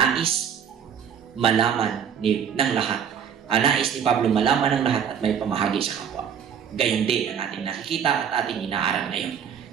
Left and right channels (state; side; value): quieter; left; 7.9 dB